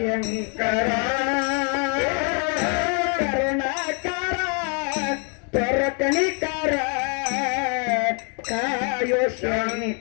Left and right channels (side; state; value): right; quieter; 37.9 dB